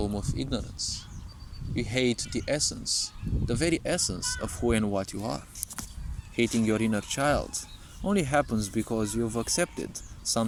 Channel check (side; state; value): both; identical; correlation 1.00